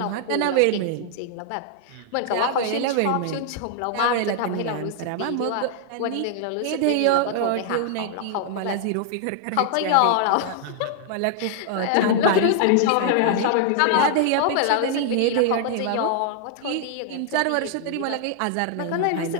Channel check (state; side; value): different; both; correlation 0.00